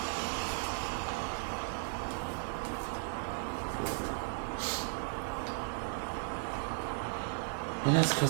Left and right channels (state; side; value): silent; left; 54 dB below the other